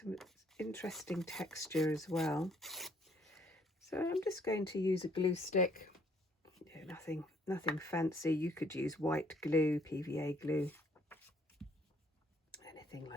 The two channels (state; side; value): normal; both; correlation 0.64